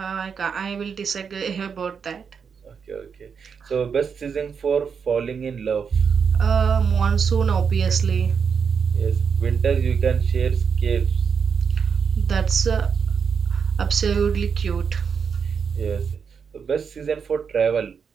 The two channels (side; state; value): left; quieter; 6.4 dB